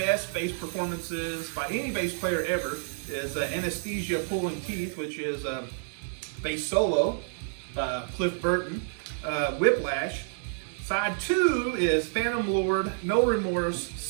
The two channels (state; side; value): silent; left; 59 dB below the other